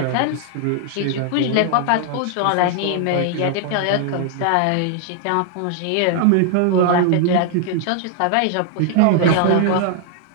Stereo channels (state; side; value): different; both; correlation 0.00